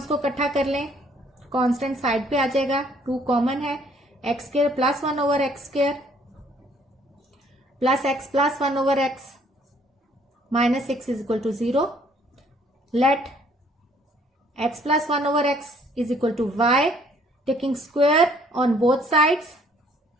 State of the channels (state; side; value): normal; both; correlation 0.61